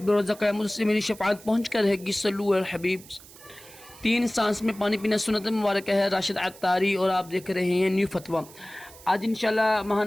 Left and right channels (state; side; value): noise; right; hiss, 20 dB below the sound